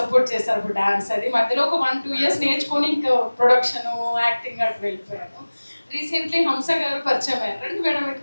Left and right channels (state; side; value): inverted; both; correlation -1.00